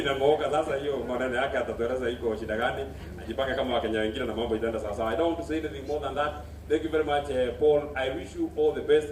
Sasa hiyo maneno yake atatueleza iko shida gani, ajipange kama Wakenya wengine na mambo itaenda sawa sawa. I don't want to say anything more than that. Thank you very much, Paul. I wish you all the best.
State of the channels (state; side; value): identical; both; correlation 1.00